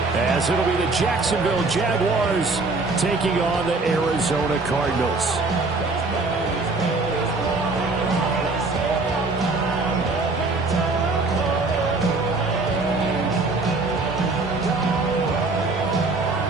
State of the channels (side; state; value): left; quieter; 3.5 dB